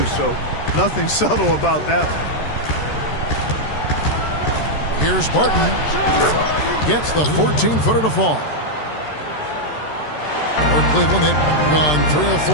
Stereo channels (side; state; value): right; late; 13 ms